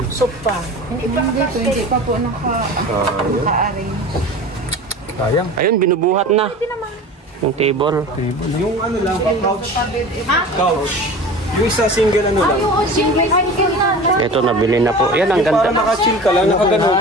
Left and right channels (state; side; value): normal; both; correlation 0.36